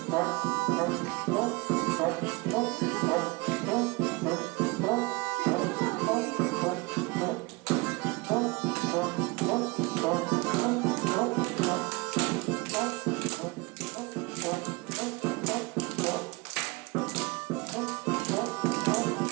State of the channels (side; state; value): left; quieter; 25.5 dB